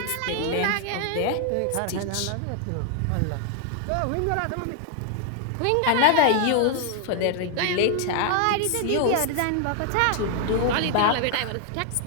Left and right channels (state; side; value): different; both; correlation 0.00